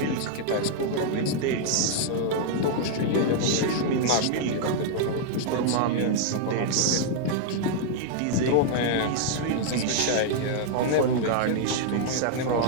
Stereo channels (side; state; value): both; different; correlation -0.01